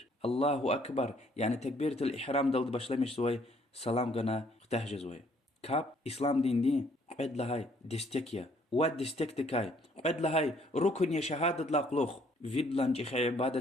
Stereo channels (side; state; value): both; normal; correlation 0.64